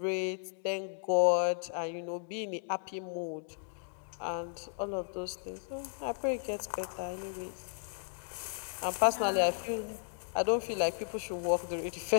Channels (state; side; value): silent; right; digital silence